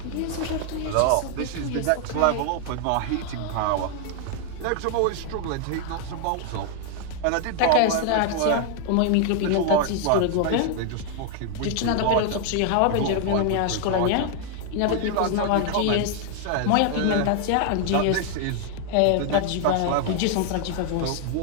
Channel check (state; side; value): different; both; correlation 0.00